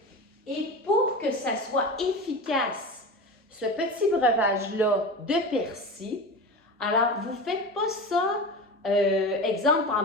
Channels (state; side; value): normal; both; correlation 0.28